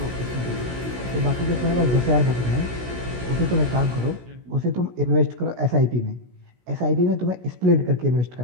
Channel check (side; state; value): left; late; 16 ms